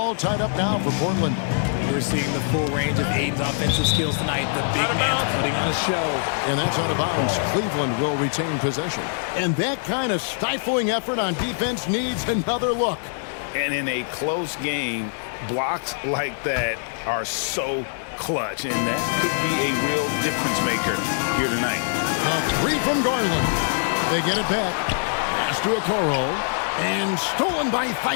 tied up now for Portland. We're seeing the full range of Ayton's offensive skills tonight. The big man's putting on a show. And that's out of bounds. Cleveland will retain possession. And that kind of stifling effort on defense needs another look. And in a close game, blocks like that are so clutch, and that could be a real difference maker here tonight. A three from Garland. They get it back. Pass to Okoro. And stolen by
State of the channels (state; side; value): silent; right; digital silence